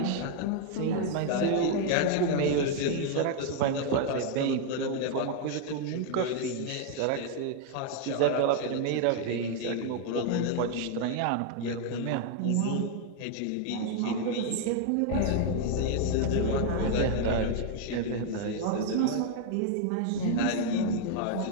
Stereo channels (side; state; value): both; different; correlation 0.00